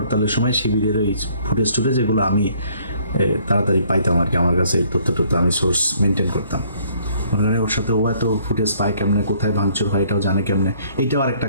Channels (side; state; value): both; inverted; correlation -0.62